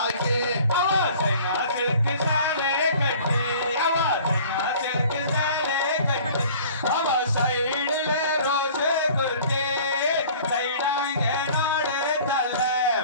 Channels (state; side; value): inverted; both; correlation -0.48